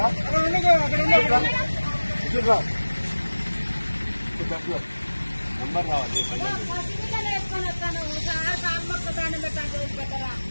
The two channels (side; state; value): both; inverted; correlation -1.00